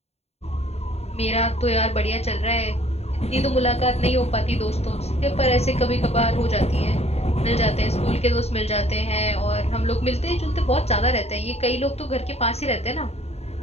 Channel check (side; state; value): right; late; 0.30 ms